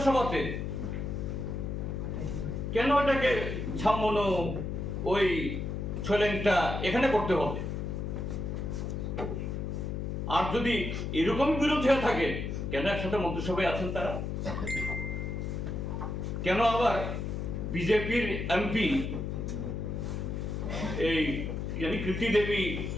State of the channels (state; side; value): noise; left; hum, 3 dB below the sound